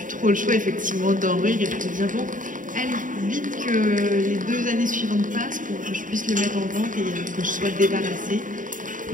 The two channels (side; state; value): left; late; 0.38 ms